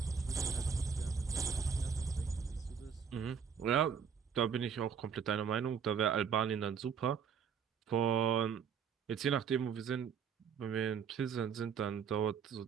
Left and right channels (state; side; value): quieter; left; 6.9 dB